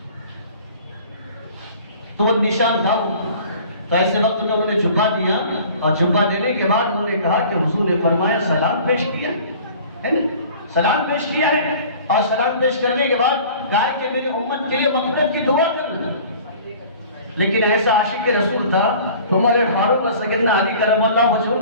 تو وہ نشان تھا۔ تو ایسے وقت میں انہوں نے جھبا دیا اور جھبا دینے کے بعد انہوں نے کہا کہ حضور نے فرمایا سلام پیش کیا ہے نا، سلام پیش کیا ہے، اور سلام پیش کرنے کے بعد کہا کہ میری امت کے لیے مغفرت کی دعا کرنا۔ لیکن ایسا عاشق رسول تھا، عمر فاروق اور سیدنا علی کرم اللہ وجہہ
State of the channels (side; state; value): both; inverted; correlation -0.47